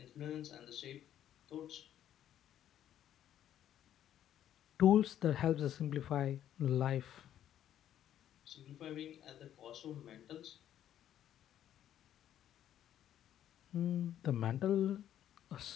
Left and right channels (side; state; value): right; quieter; 11.1 dB